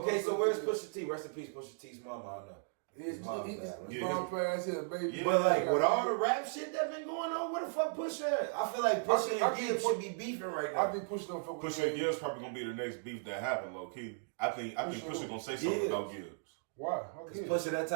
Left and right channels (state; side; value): silent; left; digital silence